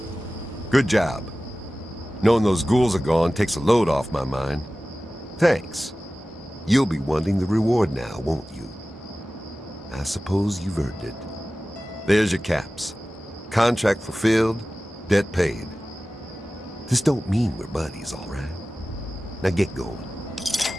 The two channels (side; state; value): both; normal; correlation 0.96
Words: Good job. Knowing those ghouls are gone takes a load off my mind. Thanks. You'll be wanting the reward now, won't you? I suppose you've earned it. There's your caps. Contract fulfilled, debt paid. This don't mean we're buddies, all right? Now get going.